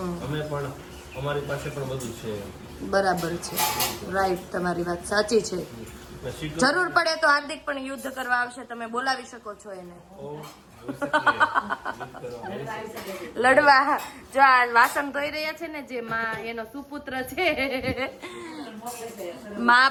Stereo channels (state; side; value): identical; both; correlation 1.00